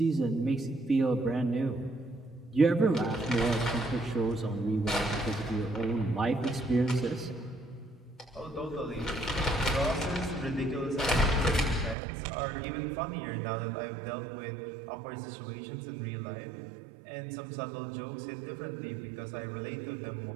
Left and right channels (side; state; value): left; drops out; at 12.0 s